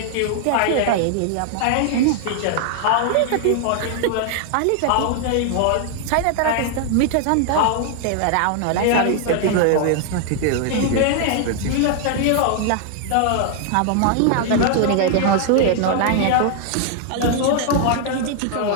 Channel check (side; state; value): both; different; correlation 0.00